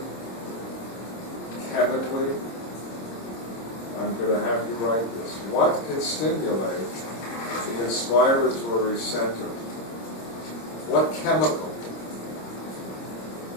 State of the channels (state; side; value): late; right; 26 ms